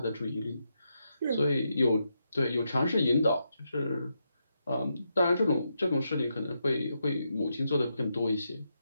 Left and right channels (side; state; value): both; inverted; correlation -0.83